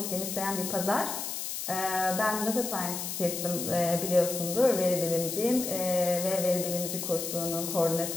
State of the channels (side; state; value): left; noise; hiss, 5 dB below the sound